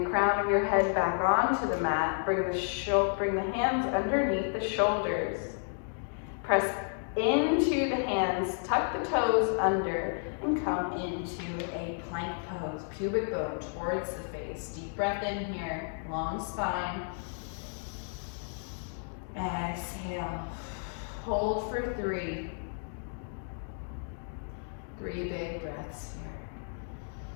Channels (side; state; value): right; silent; 57 dB below the other